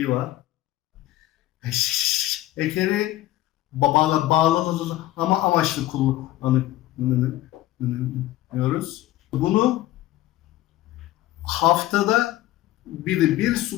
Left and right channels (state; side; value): quieter; right; 15.4 dB